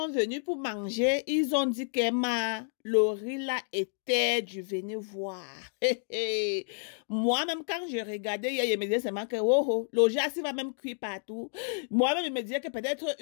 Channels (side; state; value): right; silent; digital silence